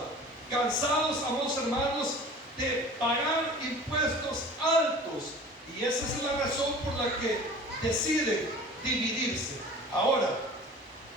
cansados, amados hermanos, de pagar impuestos altos, y esa es la razón por la que deciden dividirse. Ahora,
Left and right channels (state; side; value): normal; both; correlation 0.42